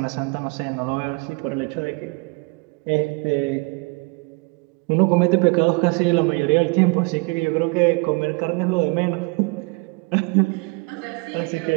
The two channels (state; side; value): quieter; left; 29.1 dB